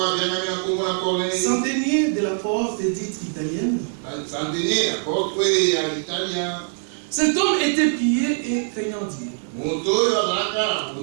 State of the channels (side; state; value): left; silent; 64 dB below the other